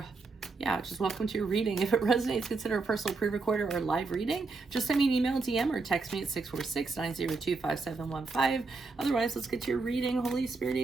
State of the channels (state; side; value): quieter; left; 4.0 dB